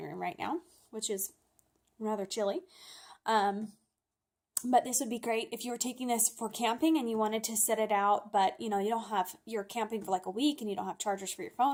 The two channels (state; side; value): identical; both; correlation 1.00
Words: room right now, which is rather chilly. But this would be great if you were taking this for camping and you wanted to set it out, but you're camping for like a week and you don't have chargers for your